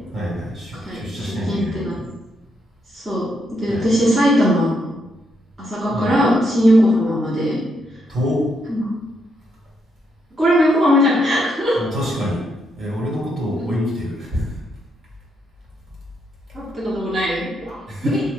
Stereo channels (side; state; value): both; normal; correlation 0.78